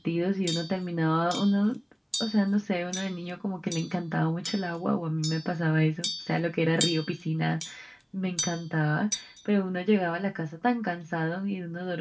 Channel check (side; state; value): both; identical; correlation 1.00